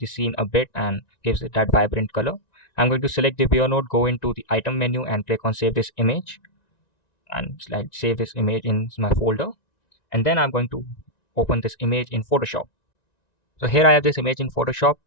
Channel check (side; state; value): right; late; 1.9 ms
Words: scene a bit and gives it that vibrant color. I'm going to select the viewer node, go into the item menu, and click on save this image, and save this image in my folder. And then I'm going to open this image in Photoshop. So here I have this image in Photoshop.